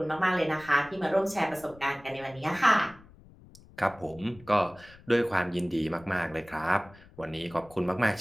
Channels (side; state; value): left; noise; rumble, 23 dB below the sound